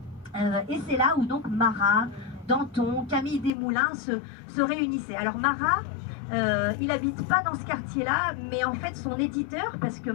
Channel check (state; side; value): drops out; right; at 3.5 s